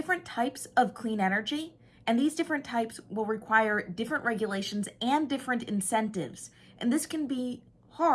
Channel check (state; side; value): identical; both; correlation 1.00